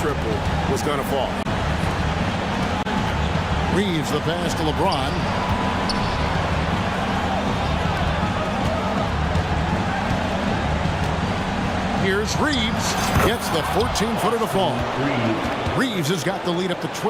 triple was going to fall. Reeves the pass to LeBron. Here's Reeves. Gets the 14-footer to fall. Reeves has got the lead up to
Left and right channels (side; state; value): both; identical; correlation 1.00